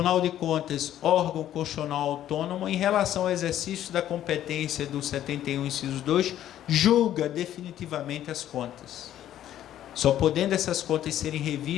de Contas, órgão constitucional autônomo, em relação ao exercício da competência do 71, inciso 2, julga definitivamente as contas, só podendo essas contas serem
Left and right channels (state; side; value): quieter; right; 11.8 dB